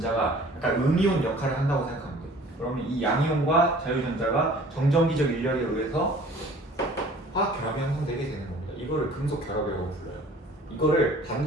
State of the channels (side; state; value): both; normal; correlation 0.50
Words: 약간 음이온 역할을 한다고 생각하면 돼. 그러면 이 양이온과 자유전자가 정전기적 인력에 의해서 화학 결합이 형성되게 되는 겁니다. 이거를 금속 결합이라고 불러요. 이거를